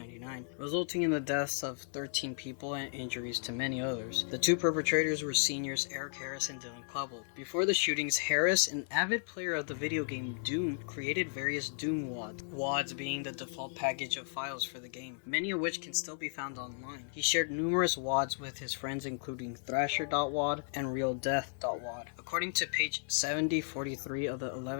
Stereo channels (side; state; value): right; silent; 55 dB below the other